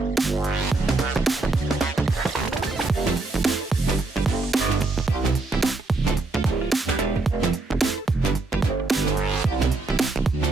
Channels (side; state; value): left; quieter; 3.3 dB